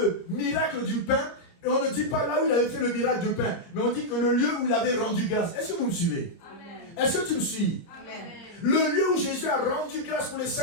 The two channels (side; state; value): right; late; 29 ms